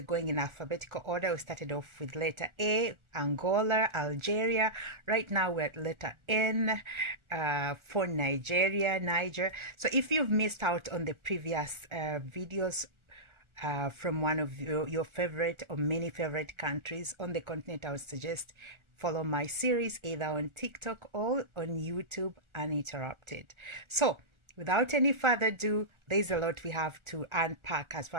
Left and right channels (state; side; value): late; left; 1.4 ms